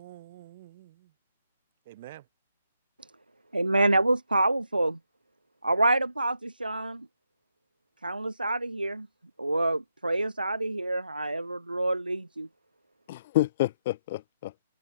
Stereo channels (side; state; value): both; inverted; correlation -0.81